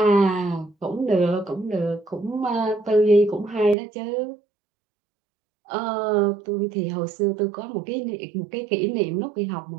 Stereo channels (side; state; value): left; drops out; at 3.8 s